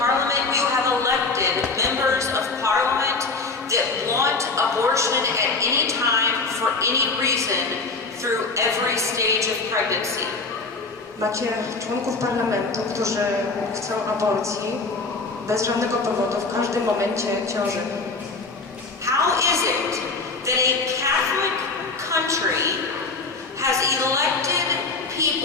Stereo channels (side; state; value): right; quieter; 3.9 dB